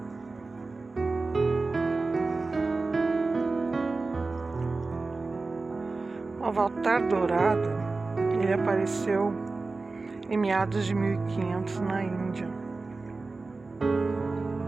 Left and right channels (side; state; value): left; quieter; 3.7 dB